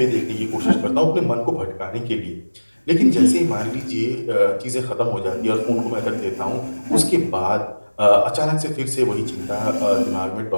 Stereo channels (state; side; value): inverted; both; correlation -1.00